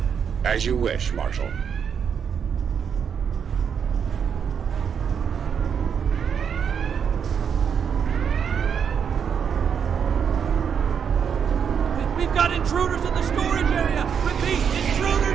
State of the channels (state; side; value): quieter; left; 7.3 dB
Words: As you wish, Marshal. We've got intruders in the storage area! Repeat,